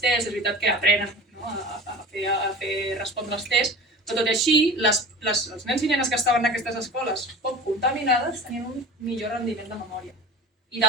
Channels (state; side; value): normal; both; correlation 0.36